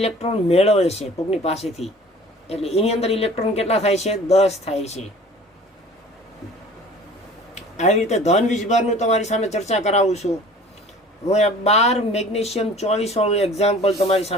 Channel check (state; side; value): normal; both; correlation 0.47